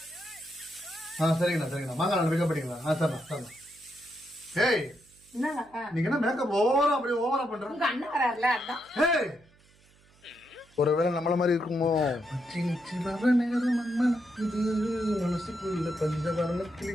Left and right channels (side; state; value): right; noise; hum, 29 dB below the sound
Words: சரிங்கண்ணா சரிங்கண்ணா. மாங்காடு பிக்கப் பண்ணிங்களா? சரிண்ணா சரிண்ணா. ஏய் நீங்க என்ன மேக்கப் ஓவரா அப்படியே ஓவரா பண்ற? உங்க அண்ணன் வராருல அதான். ஏய் ஒருவேளை நம்மள மாதிரி இருக்குமோ? மனசுக்குள்ள பஞ்சவரண கிளி